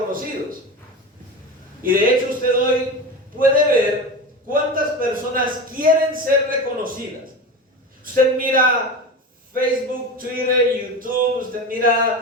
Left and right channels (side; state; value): both; normal; correlation 0.26